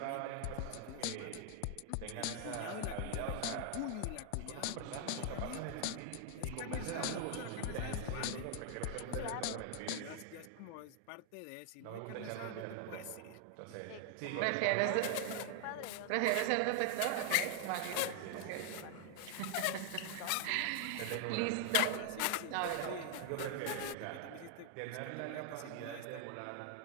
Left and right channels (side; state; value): both; different; correlation 0.00